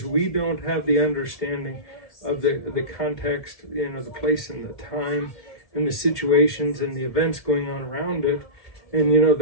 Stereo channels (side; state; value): right; late; 2.1 ms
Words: we don't have the understanding of the context, the place and the time and the situations and the events going on around it, and